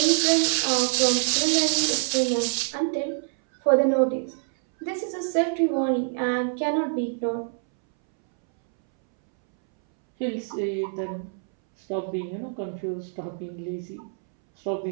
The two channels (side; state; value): left; silent; 62 dB below the other